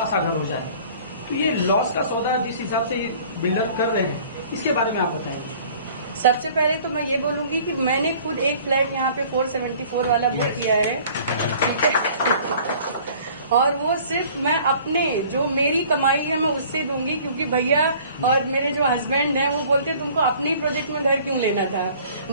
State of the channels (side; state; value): both; inverted; correlation -0.51